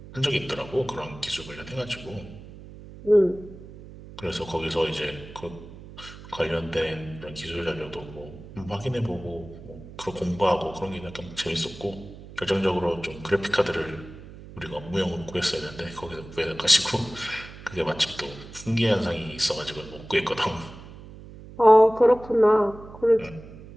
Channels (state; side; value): noise; right; hum, 16 dB below the sound